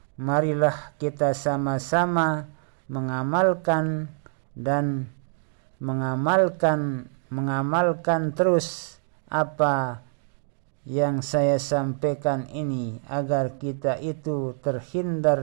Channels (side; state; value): left; silent; digital silence